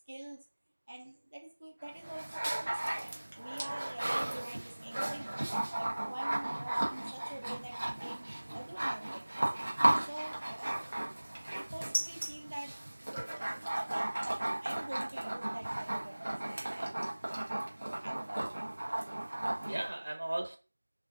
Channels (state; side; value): inverted; both; correlation -1.00